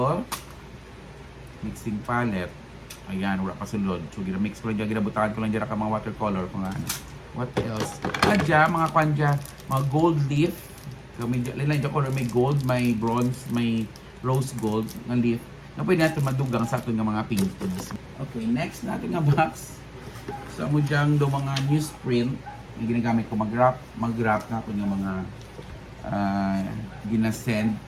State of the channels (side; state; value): both; identical; correlation 1.00